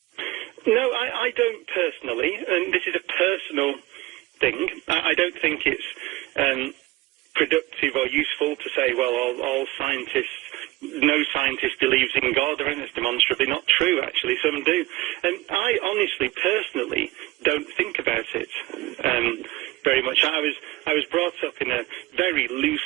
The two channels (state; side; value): quieter; left; 18.9 dB